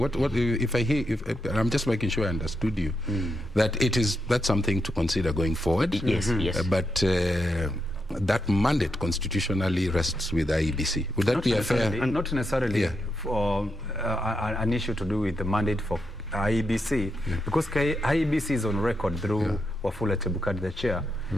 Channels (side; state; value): both; normal; correlation 0.83